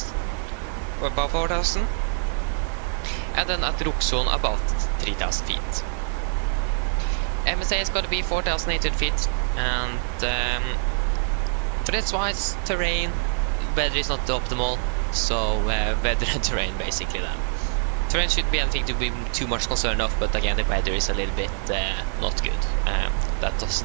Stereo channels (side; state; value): left; silent; 62 dB below the other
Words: And then at Ruxon about 3000 feet. MSA is going to be 4800 feet, and for this wise terrain, weather is not optimal, so weather and terrain basically then. Terrain shouldn't be anything to be too much concerned of, but again the weather is a little bit not good. That